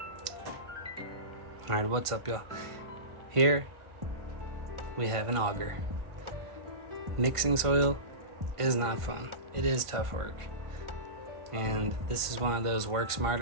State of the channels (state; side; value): late; left; 1.5 ms